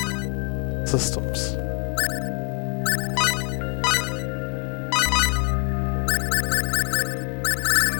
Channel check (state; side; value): quieter; right; 31.1 dB